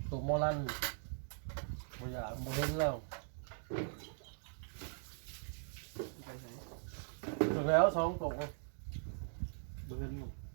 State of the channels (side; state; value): left; silent; digital silence